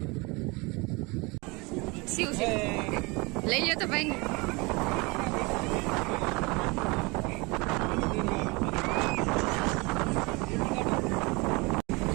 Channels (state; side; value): quieter; left; 26.6 dB